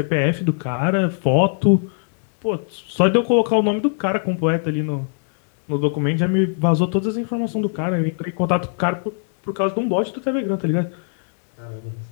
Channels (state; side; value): silent; right; digital silence